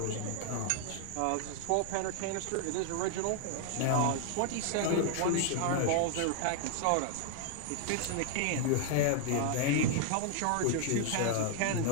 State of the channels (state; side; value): different; both; correlation 0.00